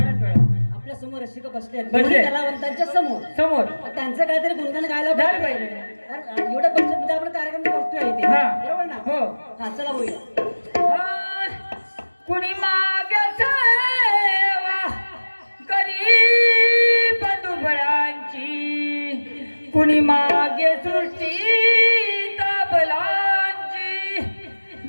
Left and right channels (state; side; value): inverted; both; correlation -1.00